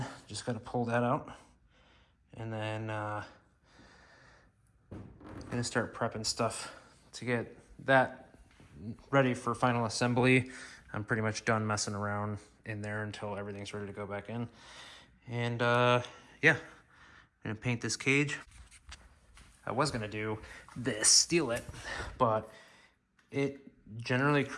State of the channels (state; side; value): identical; both; correlation 1.00